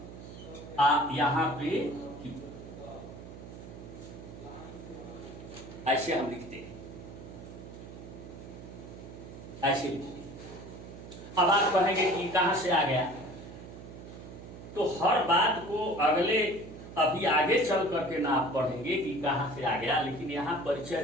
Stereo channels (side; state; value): right; noise; hum, 14 dB below the sound